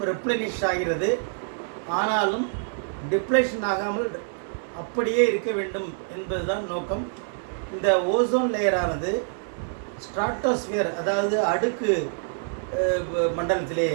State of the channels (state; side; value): silent; left; digital silence